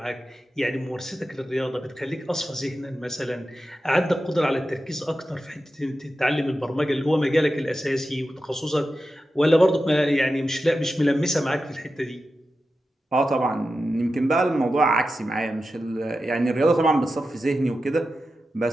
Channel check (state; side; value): normal; both; correlation 0.91